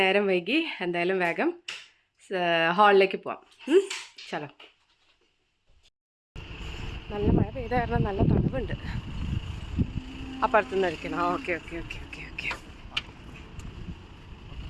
നേരം വൈകി, എന്തായാലും വേഗം ഹാളിലേക്ക് പോവാം. ചലോ. നല്ല മഴ പെയ്ത കാരണം നല്ല തണുപ്പുണ്ട്. അപ്പുറത്തുനിന്ന് അടിക്കണം. Okay okay okay okay okay.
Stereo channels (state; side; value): identical; both; correlation 1.00